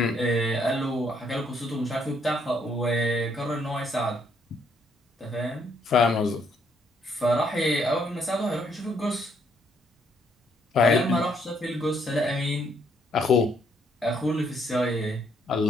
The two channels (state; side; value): normal; both; correlation 0.70